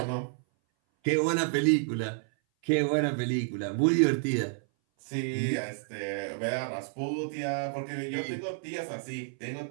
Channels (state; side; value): silent; left; 57 dB below the other